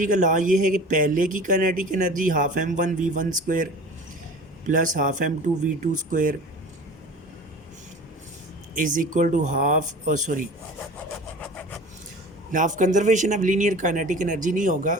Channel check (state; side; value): normal; both; correlation 0.39